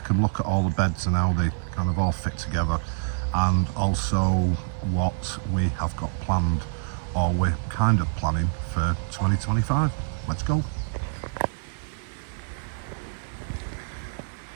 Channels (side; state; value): left; silent; digital silence